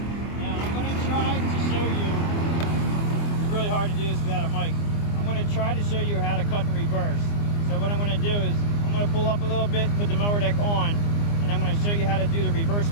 Really hard to do this without a mic. I'm going to try to show you how to cut and reverse. So what I'm going to do is I'm going to pull up a little bit, put the mower deck on, and I'm going to show you how to do the reverse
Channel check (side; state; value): right; late; 24 ms